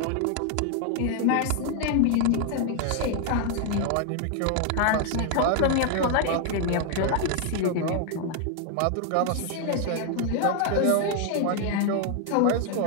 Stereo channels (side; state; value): both; different; correlation 0.00